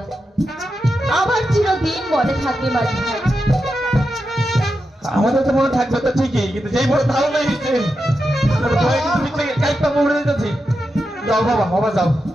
আমার চিরদিন মনে থাকবে মাঝি ভাই। আমাদের তো মনে থাকবে তো ঠিকই, কিন্তু যেই বড় ধারণা হয়েছে কাইপা উড়ে যেতেছি। যাও বাবা, বাবা যাও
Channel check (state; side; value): normal; both; correlation 0.88